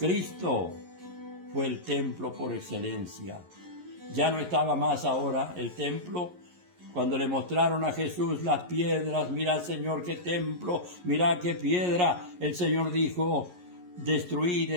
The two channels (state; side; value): late; left; 11 ms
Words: fue el templo por excelencia. Ya no estaba más ahora el templo. Cuando le mostraron a Jesús las piedras, mira, Señor, qué templo, mira qué piedra, el Señor dijo, destruid